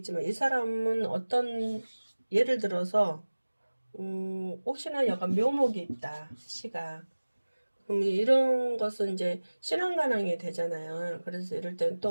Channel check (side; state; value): both; inverted; correlation -1.00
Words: 이 사람은 어떤 예를 들어서 혹시나 약간 묘목이 있다 시가 그럼 이런 것은 이제 신앙관항이 되잖아요. 그래서 이럴 때는 또